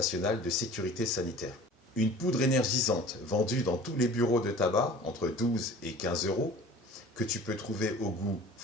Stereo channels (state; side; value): normal; both; correlation 0.43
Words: de sécurité sanitaire. Une poudre énergisante vendue dans tous les bureaux de tabac, entre 12 et 15 euros, que tu peux trouver au goût